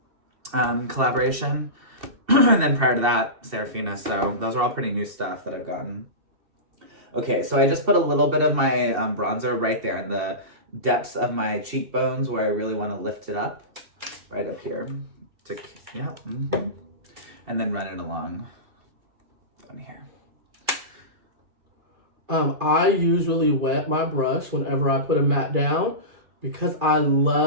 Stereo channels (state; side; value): late; left; 2.7 ms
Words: collaboration. And then prior to that, Serafina. So those are all pretty new stuff that I've gotten. Okay, so I just put a little bit of my bronzer right there in the depths of my cheekbones where I really want to lift it up. Right up here. And then run it along here. I usually wet my brush whenever I put a matte down because I